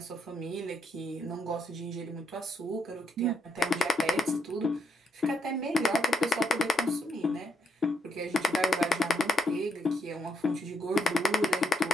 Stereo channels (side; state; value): both; normal; correlation 0.77